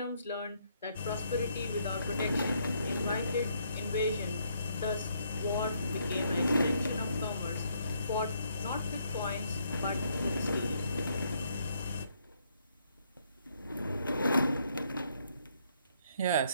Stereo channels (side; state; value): both; inverted; correlation -0.71